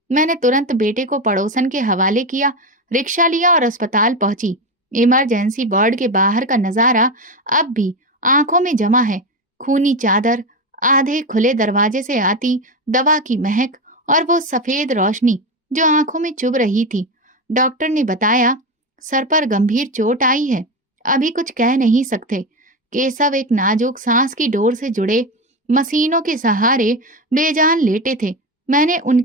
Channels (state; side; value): normal; both; correlation 0.17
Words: मैंने तुरंत बेटे को पड़ोसन के हवाले किया, रिक्शा लिया और अस्पताल पहुंची। इमरजेंसी वार्ड के बाहर का नजारा अब भी आंखों में जमा है। खूनी चादर, आधे खुले दरवाजे से आती दवा की महक और वो सफेद रोशनी जो आंखों में चुभ रही थी। डॉक्टर ने बताया, सर पर गंभीर चोट आई है, अभी कुछ कह नहीं सकते। केशव एक नाजुक सांस की डोर से जुड़े मशीनों के सहारे बेजान लेटे थे। मैंने